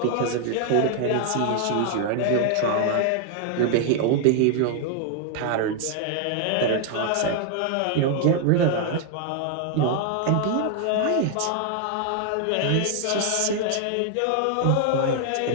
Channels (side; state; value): both; different; correlation 0.00